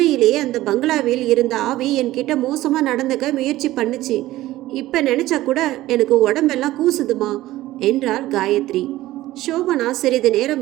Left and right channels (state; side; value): quieter; left; 16.1 dB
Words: அந்த பங்களாவில் இருந்த ஆவி என்கிட்ட மோசமாக நடந்துக்க முயற்சி பண்ணுச்சு. இப்போ நினச்சா கூட எனக்கு உடம்பெல்லாம் கூசுதுமா என்றாள் காயத்ரி. சோபனா சிறிது